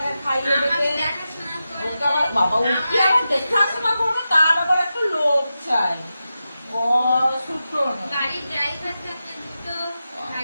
খাইয়ে দেবে। ওকে আবার বাবা উঠে আবার দেখাশোনা করবে, তার আবার একটু লোক চাই।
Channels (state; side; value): inverted; both; correlation -0.91